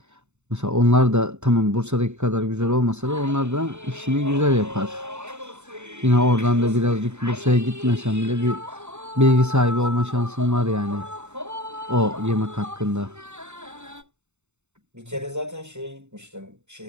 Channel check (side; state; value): left; late; 0.83 ms